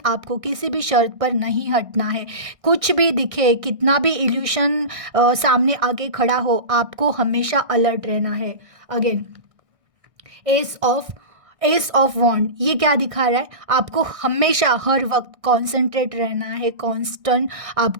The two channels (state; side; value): late; left; 1.6 ms